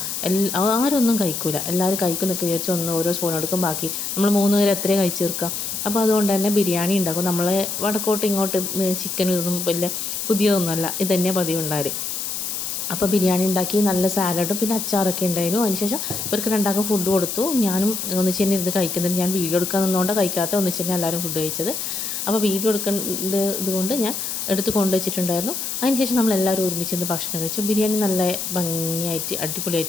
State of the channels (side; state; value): left; noise; hiss, 4 dB below the sound